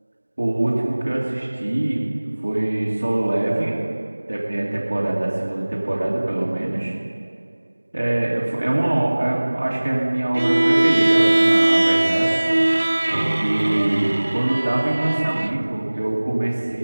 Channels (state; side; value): inverted; both; correlation -1.00